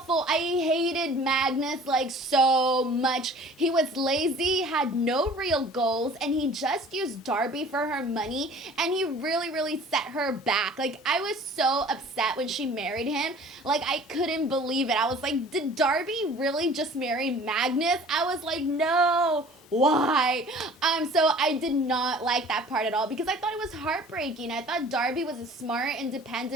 I hated Magnus like so much. He was lazy, had no real goals, and he just used Darby for her money, and he really set her back. Like, I was so upset when she married him. Like, I couldn't believe it. I was like, did Darby really just marry Magnus? I was like, no. Why? So I did not like that part at all because I thought it was heartbreaking. I thought Darby was a smart,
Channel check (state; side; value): normal; both; correlation 0.48